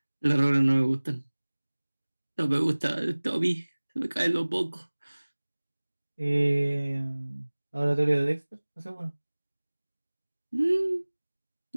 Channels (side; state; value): both; inverted; correlation -1.00